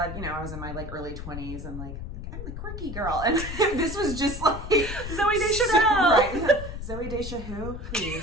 I was in my early 20s and I'm the quirky girl. And this was just like Zoe Deschanel. Right. Zoe Deschanel,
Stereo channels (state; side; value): noise; left; rumble, 8 dB below the sound